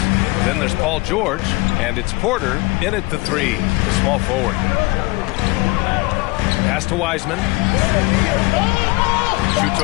Then there's Paul George. And it's Porter in at the 3, the small forward. Pass to Wiseman. Shoots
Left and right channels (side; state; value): right; quieter; 24.0 dB